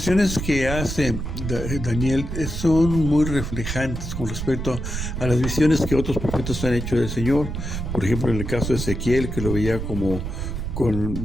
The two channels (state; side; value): noise; right; rumble, 5 dB below the sound